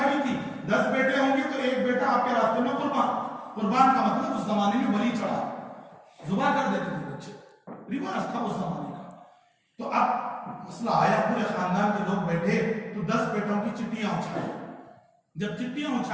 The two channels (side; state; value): both; identical; correlation 1.00